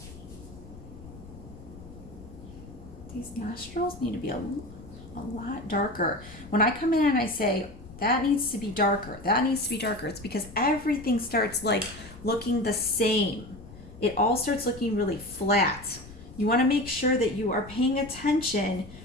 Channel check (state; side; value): noise; left; rumble, 17 dB below the sound